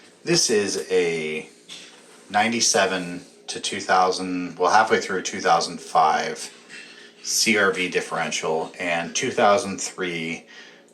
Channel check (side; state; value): both; identical; correlation 1.00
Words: This is a 97 to 2000, well halfway through 2005 CRV differential and 2003